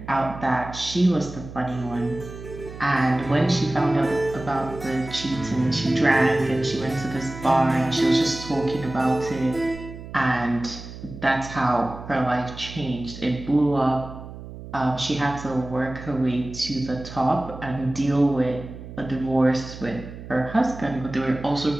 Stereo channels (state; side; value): noise; right; hum, 13 dB below the sound